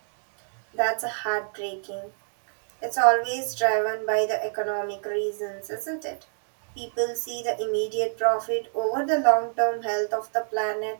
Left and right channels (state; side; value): silent; left; digital silence